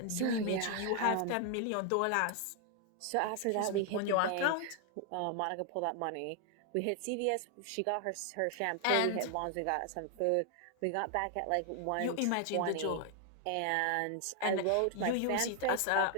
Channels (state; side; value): different; both; correlation 0.00